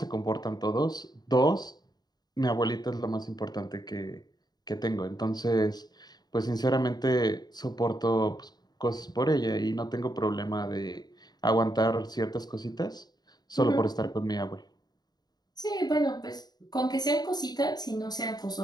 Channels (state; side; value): late; right; 0.20 ms